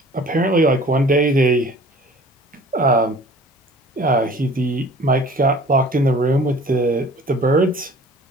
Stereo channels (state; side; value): normal; both; correlation 0.48